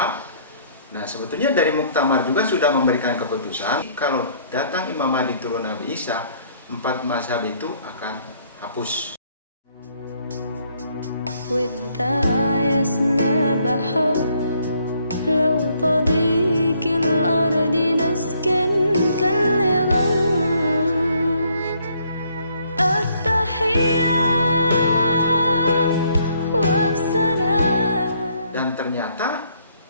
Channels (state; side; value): inverted; both; correlation -0.66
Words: Nah, sebetulnya dari muktamar juga sudah memberikan keputusan kalau datang Imam Mahdi turun Nabi Isa, 4 mazhab itu akan hapus.